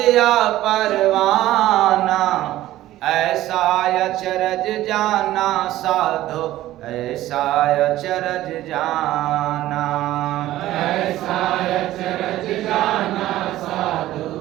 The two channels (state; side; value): quieter; left; 14.9 dB